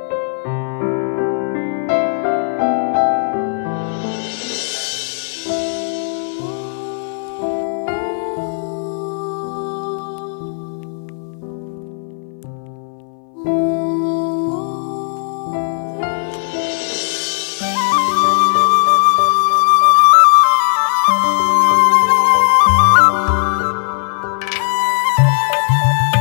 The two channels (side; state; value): right; silent; 62 dB below the other